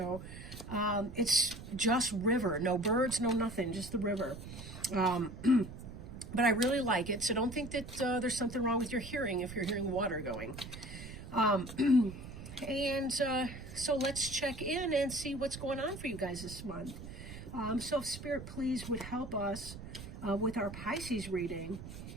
It's just river, no birds, no nothing, just the river. But I really like it, so don't think that there's something wrong with your hearing if you're hearing water going. So let's check in and see what's going on for you guys this month. So if Spirit, please, would help us with our Pisces reading.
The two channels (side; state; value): right; noise; rumble, 11 dB below the sound